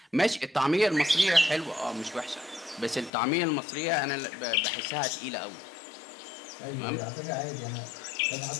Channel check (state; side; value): drops out; right; at 3.1 s